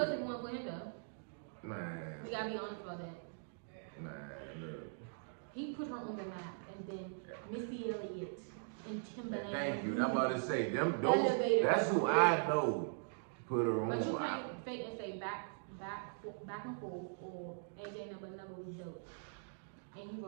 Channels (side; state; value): left; silent; digital silence